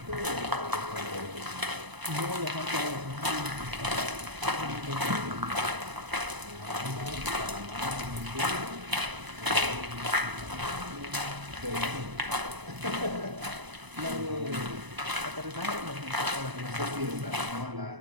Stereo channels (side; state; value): left; late; 1.0 ms